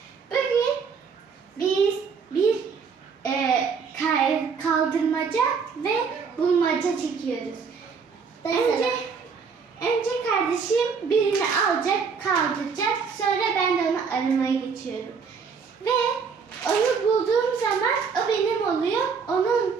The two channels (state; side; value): quieter; left; 5.7 dB